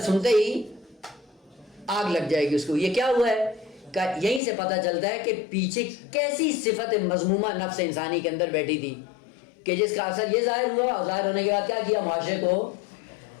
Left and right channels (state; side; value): drops out; right; at 4.4 s